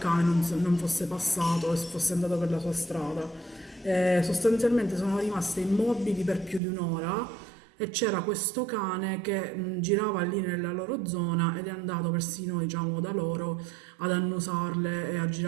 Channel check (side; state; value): left; drops out; at 6.6 s